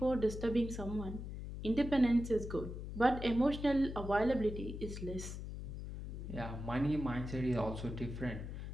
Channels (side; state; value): left; noise; hum, 7 dB below the sound